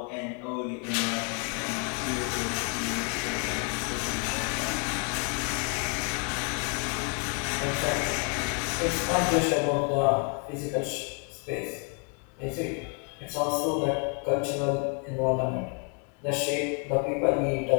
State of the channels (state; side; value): quieter; right; 38.6 dB